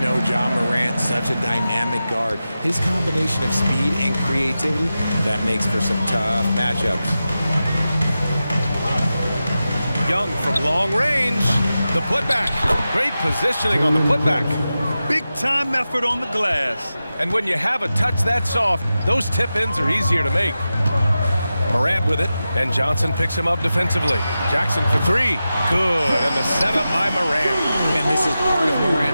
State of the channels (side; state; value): both; inverted; correlation -0.93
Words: John Morant, such a dynamic guard. His combination of speed and creativity, that makes for some tough matchups. Young from long range. The putback. Great positioning on the putback. Big time effort on the glass. And when you have a touch that soft, those tip-ins are easier to make. Morant with it, and Johnson picks him up defensively. Jackson for 3. Good, and the setup by Morant. And this is part of